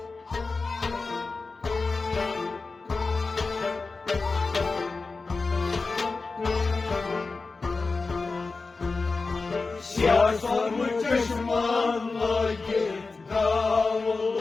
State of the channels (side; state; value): right; quieter; 4.0 dB